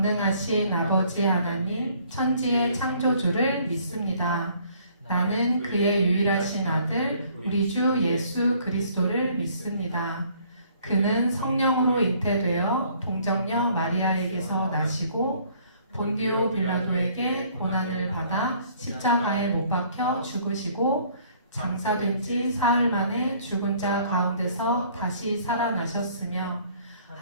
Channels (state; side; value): inverted; both; correlation -0.60